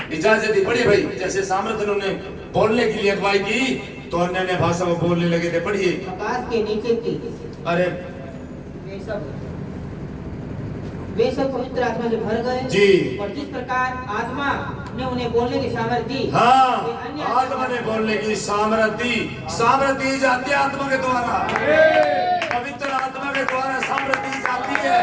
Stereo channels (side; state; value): both; identical; correlation 1.00